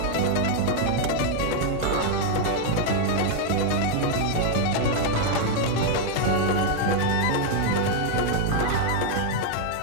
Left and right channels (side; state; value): both; different; correlation 0.00